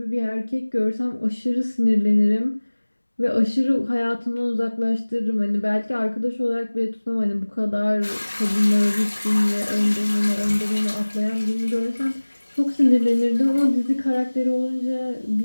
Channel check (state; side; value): inverted; both; correlation -1.00